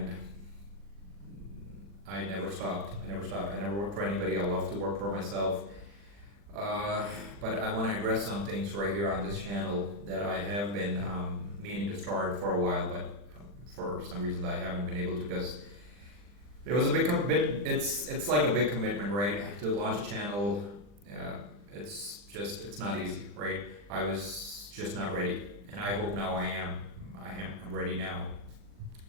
I never stopped. I never worked for anybody. I love to work for myself. But I want to address some things right here on this channel that I have been meaning to start for a while, but for some reason I haven't been able to, because it was a big it's like a big commitment, right? To launch a channel. It's not easy, right? I was just not ready, and I hope now I am. I'm ready now.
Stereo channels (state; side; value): late; left; 40 ms